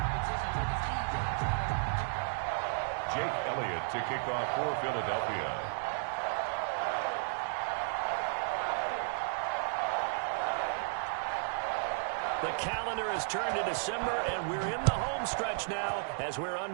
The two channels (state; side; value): silent; left; digital silence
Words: To kick off for Philadelphia. The calendar has turned to December, and we're in the home stretch now as we're